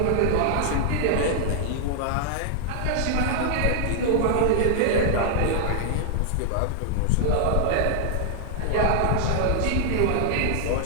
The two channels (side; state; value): both; different; correlation -0.01